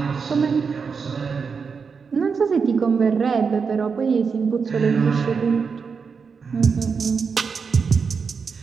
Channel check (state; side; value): quieter; left; 5.6 dB